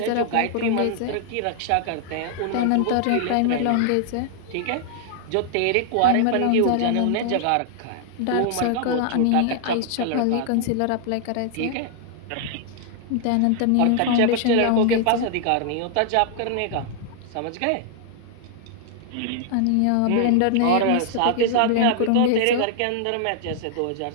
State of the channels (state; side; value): different; both; correlation 0.00